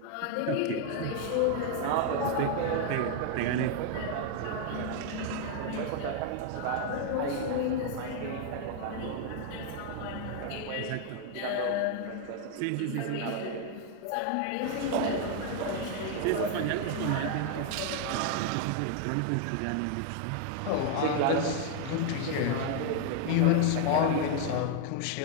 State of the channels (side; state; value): both; different; correlation 0.00